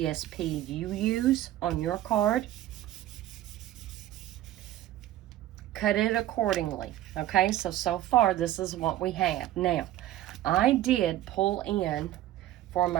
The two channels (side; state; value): left; quieter; 13.8 dB